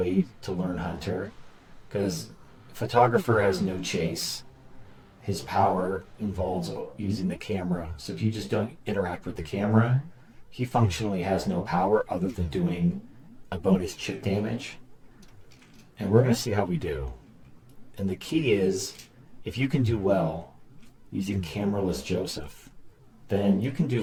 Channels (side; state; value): both; identical; correlation 1.00